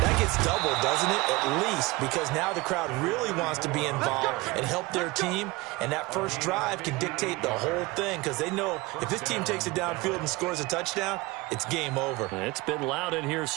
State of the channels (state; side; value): quieter; left; 22.3 dB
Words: that gets doubled, doesn't it? At least, because now the crowd really wants to be involved and help their team. And that first drive can dictate the whole thing because they know if this team takes it downfield and scores a touchdown, it's game over. It's been loud in here